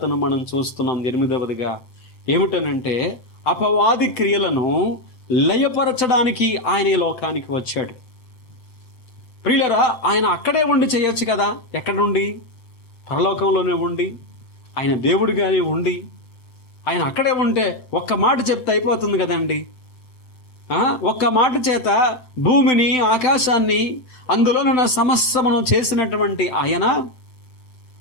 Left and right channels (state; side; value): late; right; 7.8 ms